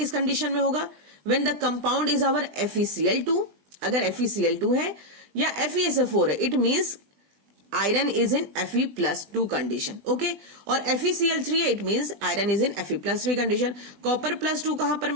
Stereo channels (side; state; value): left; late; 20 ms